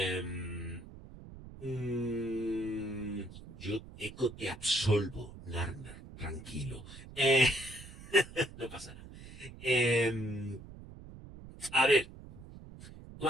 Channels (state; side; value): noise; right; rumble, 16 dB below the sound